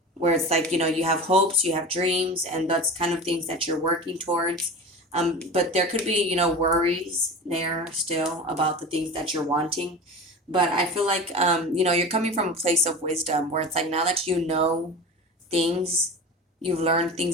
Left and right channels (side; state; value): both; normal; correlation 0.32